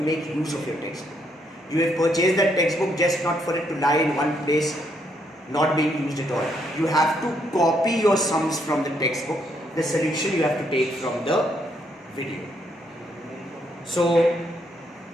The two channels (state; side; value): normal; both; correlation 0.74